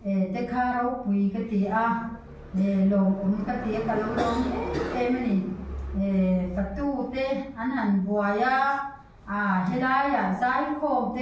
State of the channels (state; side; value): identical; both; correlation 1.00